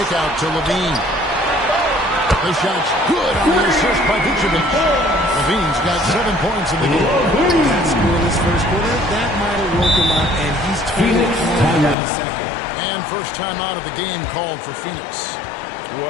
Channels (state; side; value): drops out; right; at 12.0 s